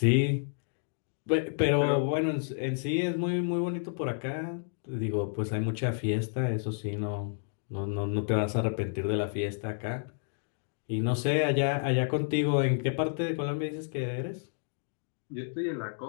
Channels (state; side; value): silent; right; digital silence